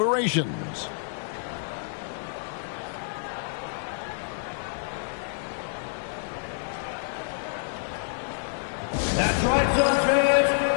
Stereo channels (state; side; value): silent; right; digital silence